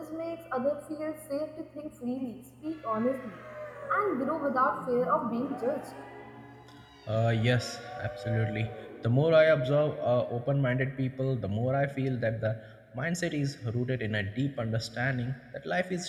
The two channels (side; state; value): both; identical; correlation 1.00